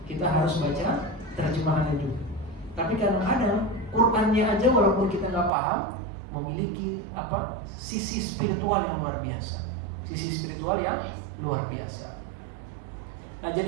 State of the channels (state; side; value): drops out; left; at 5.5 s